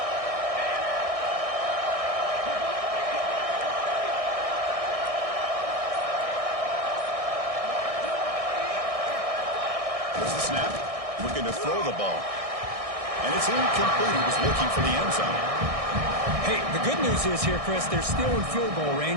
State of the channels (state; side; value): late; left; 1.6 ms